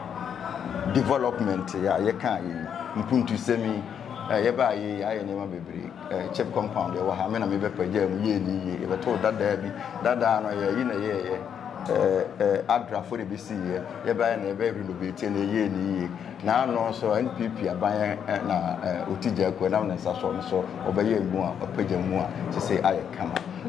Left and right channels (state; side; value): quieter; right; 8.2 dB